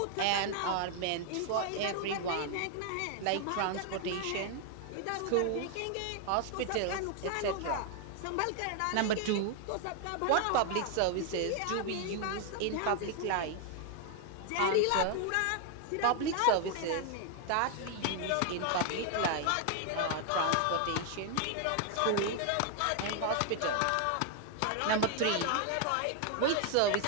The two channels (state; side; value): different; both; correlation 0.00